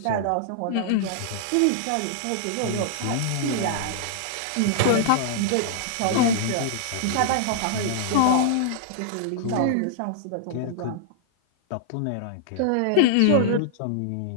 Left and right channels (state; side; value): different; both; correlation -0.01